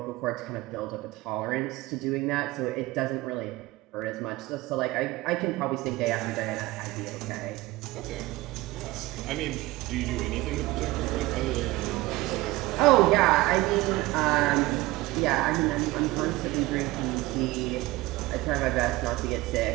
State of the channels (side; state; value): left; quieter; 19.3 dB